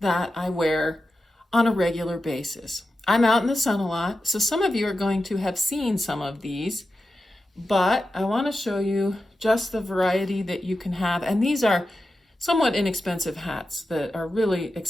that I wear on a regular basis. I'm out in the sun a lot, so some of you are going to have seen some of these, but I want to show you just the variety that you can have. And these are somewhat inexpensive hats that are really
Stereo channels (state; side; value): normal; both; correlation 0.92